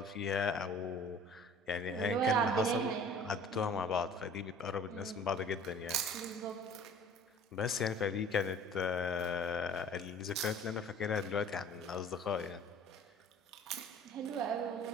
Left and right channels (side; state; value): both; normal; correlation 0.48